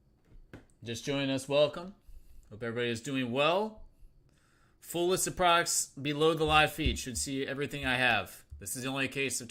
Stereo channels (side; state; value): both; identical; correlation 1.00